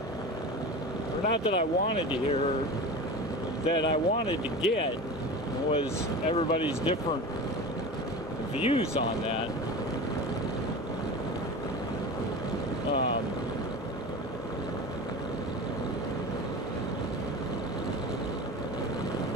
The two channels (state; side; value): normal; both; correlation 0.31